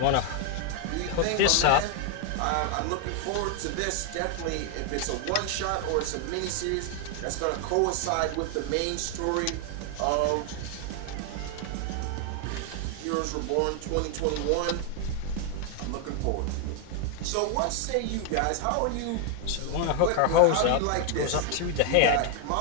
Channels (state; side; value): different; both; correlation 0.00